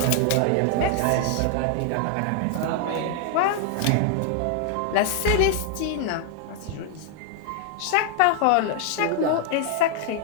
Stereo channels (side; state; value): both; different; correlation 0.00